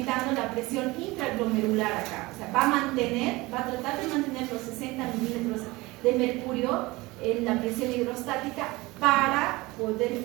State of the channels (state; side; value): quieter; left; 21.7 dB